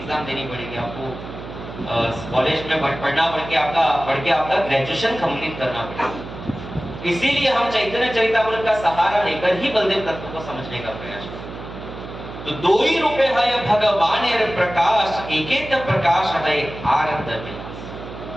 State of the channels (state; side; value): noise; right; hum, 12 dB below the sound